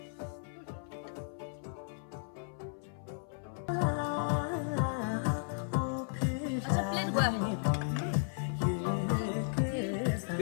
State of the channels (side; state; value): right; silent; 55 dB below the other